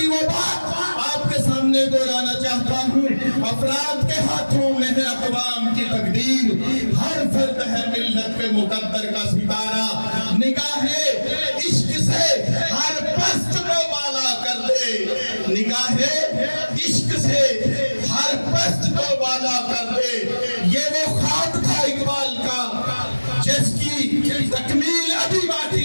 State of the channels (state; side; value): inverted; both; correlation -1.00